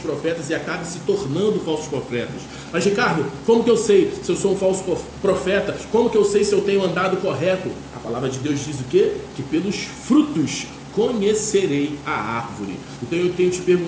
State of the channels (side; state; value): both; identical; correlation 1.00